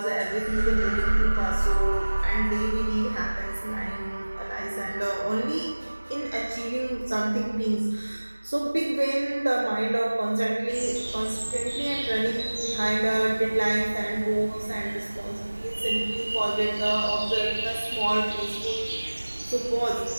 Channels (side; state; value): both; inverted; correlation -1.00